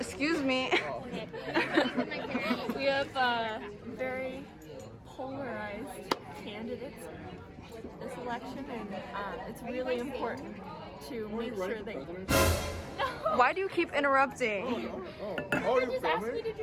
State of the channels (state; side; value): identical; both; correlation 1.00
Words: me. we have very polarized candidates this election, and it's really important to make sure that... No! Why do you keep interrupting? Oh, She just asked me to